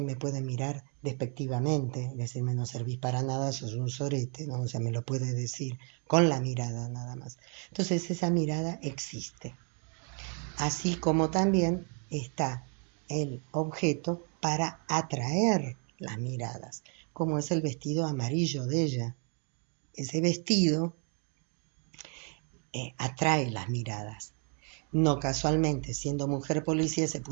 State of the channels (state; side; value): quieter; left; 39.9 dB